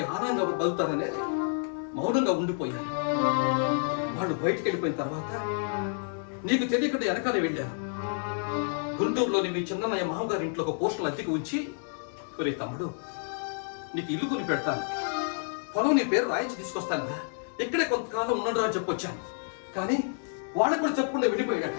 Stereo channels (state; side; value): silent; right; digital silence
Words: ఆనందంగా బతుకుతారనే మౌనంగా ఉండిపోయాను. వాళ్ళు బయటకు వెళ్ళిపోయిన తర్వాత నీకు తెలియకుండా వెనకాలే వెళ్ళాను. గుంటూరులోని మీ చిన్నయ్య మామగారి ఇంట్లో ఒక పోస్టులు అద్దెకి ఉంచి, ఒరే తమ్ముడు, నీకు ఇల్లు కొని పెడతాను, పొలం నీ పేరు రాయించి తీసుకొస్తాను, ఇక్కడే కొంతకాలం ఉండడు అని చెప్పొచ్చాను. కానీ వాళ్ళకు కూడా చెప్పకుండా వెళ్ళిపోయాడు.